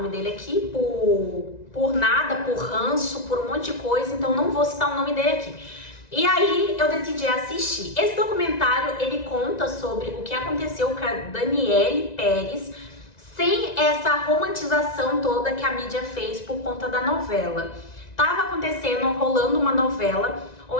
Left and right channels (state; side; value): late; right; 1.9 ms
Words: dele aqui por nada, por ranço, por um monte de coisa, então não vou citar o nome dele aqui. E aí eu decidi assistir. Esse documentário, ele conta sobre o que aconteceu com a Daniele Pérez, sem essa romantização toda que a mídia fez por conta da novela. Tava acontecendo, rolando uma novela,